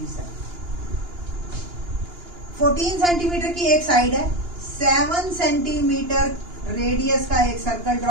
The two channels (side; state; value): left; late; 2.9 ms